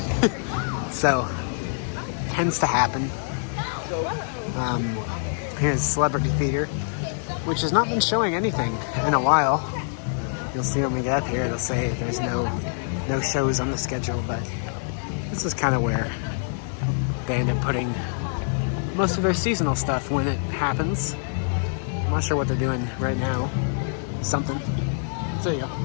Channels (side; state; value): right; silent; digital silence